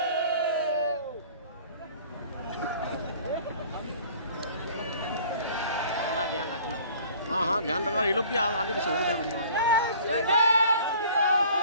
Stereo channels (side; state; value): both; inverted; correlation -0.50